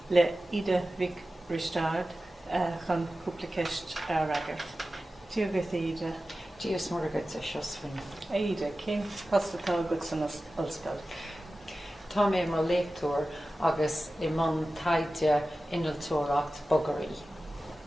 le ide Vic Ristard chun Cúpla Ceist agart. Díogad ide. Díos mar agad a Seosaimhín. Ide, cén hostatá agad san ollscoil. Tá mé mar léictúir agus I man taide inaltóireacht bogarí.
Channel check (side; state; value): both; normal; correlation 0.95